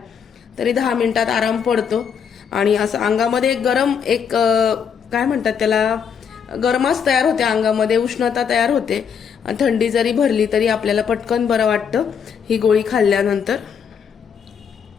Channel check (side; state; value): right; quieter; 7.2 dB